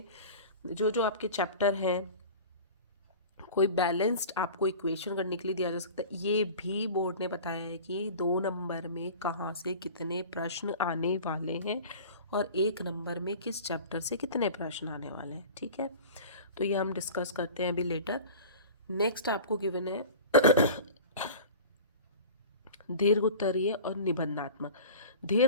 जो जो आपके चैप्टर हैं, कोई बैलेंस्ड आपको इक्वेशन करने के लिए दिया जा सकता है। ये भी बोर्ड ने बताया है कि 2 नंबर में कहाँ से कितने प्रश्न आने वाले हैं और 1 नंबर में किस चैप्टर से कितने प्रश्न आने वाले हैं, ठीक है। तो ये हम डिस्कस करते हैं अभी लेटर। नेक्स्ट आपको गिवन है दीर्घ उत्तरीय और निबंधात्मक।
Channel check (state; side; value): inverted; both; correlation -0.38